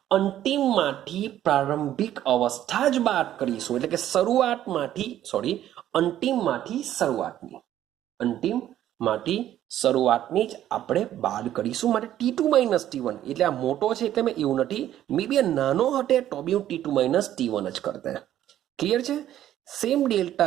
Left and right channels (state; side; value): quieter; left; 12.1 dB